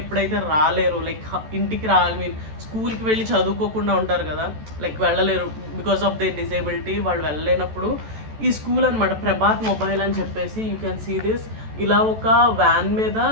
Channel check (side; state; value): left; late; 14 ms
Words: రాలేరు, లైక్ ఇంటికి రాలి స్కూల్కి వెళ్ళి చదువుకోకుండా ఉంటారు కదా, లైక్ వెళ్ళలేరు బికాస్ ఆఫ్ దే డిసేబిలిటీ. వాళ్ళు వెళ్ళలేనప్పుడు ఈ స్కూల్ అనమాట ప్రభాత్ మొబైల్ అని చెప్పేసి, యూ కెన్ సీ దిస్. ఇలా ఒక వ్యాన్ మీద